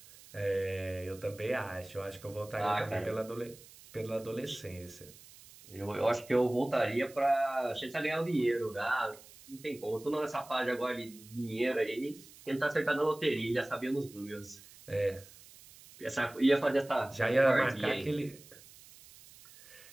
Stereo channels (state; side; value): noise; right; hiss, 21 dB below the sound